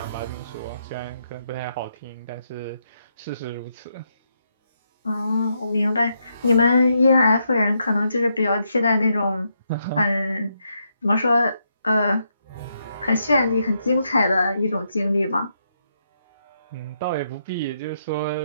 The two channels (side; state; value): both; inverted; correlation -0.79